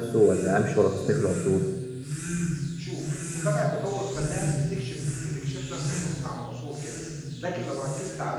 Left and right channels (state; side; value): identical; both; correlation 1.00